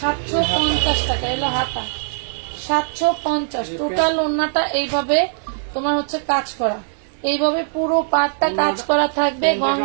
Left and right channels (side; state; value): left; silent; digital silence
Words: 750 টাকা। এলো হাতা 750। টোটাল ওড়নাটা এইভাবে তোমার হচ্ছে কাজ করা, এইভাবে পুরো পাটটা কাজ করা থাকবে।